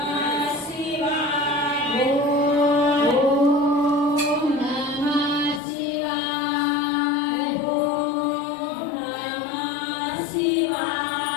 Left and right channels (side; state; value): right; drops out; at 5.6 s